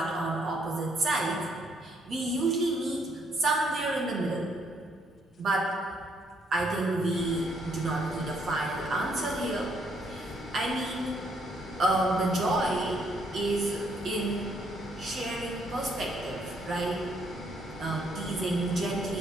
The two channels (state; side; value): normal; both; correlation 0.70